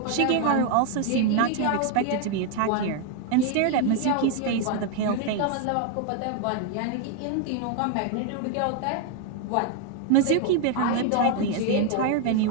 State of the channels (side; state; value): both; different; correlation 0.00